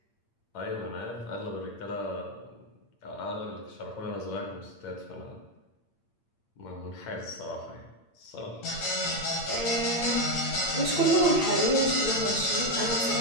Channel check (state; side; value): late; right; 8.8 ms